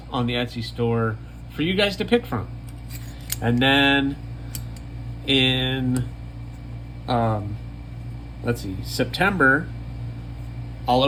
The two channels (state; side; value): identical; both; correlation 1.00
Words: on the Etsy store for you guys to pick from. And then in, let's see, September, I'll